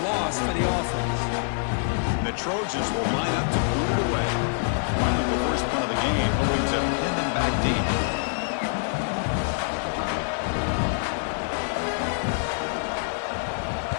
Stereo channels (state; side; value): silent; right; digital silence